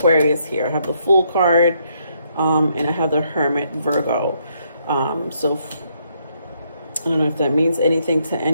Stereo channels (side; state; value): both; inverted; correlation -0.73